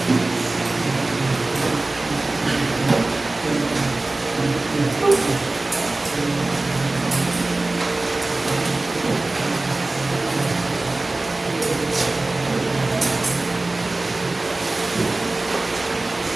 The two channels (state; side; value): quieter; left; 3.0 dB